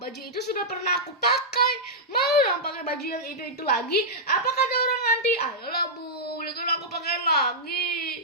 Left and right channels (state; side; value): normal; both; correlation -0.10